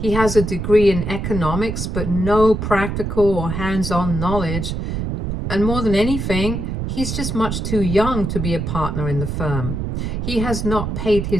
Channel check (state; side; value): noise; right; rumble, 3 dB below the sound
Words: has a degree in economics, but no practical or hands-on knowledge. And more than anything, he's just much too young to be a partner in the firm. He has not paid